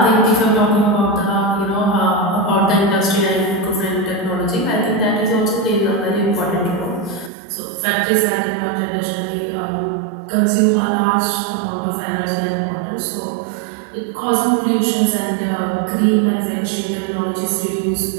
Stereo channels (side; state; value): left; drops out; at 7.3 s